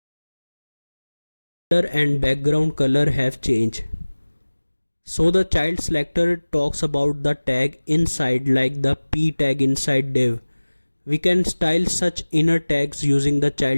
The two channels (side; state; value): both; inverted; correlation -1.00